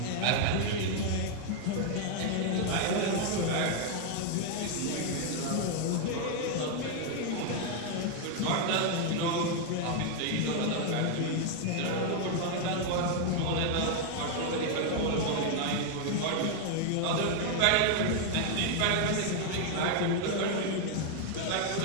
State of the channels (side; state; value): both; different; correlation 0.00